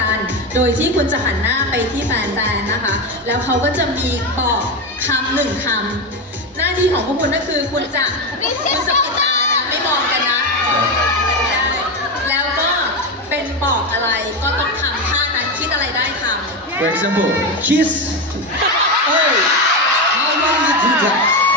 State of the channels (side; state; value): both; normal; correlation 0.14